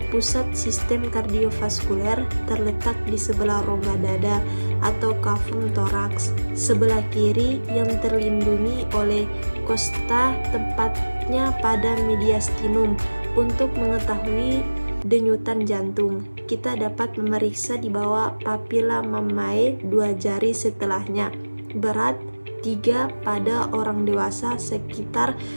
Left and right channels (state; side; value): inverted; both; correlation -1.00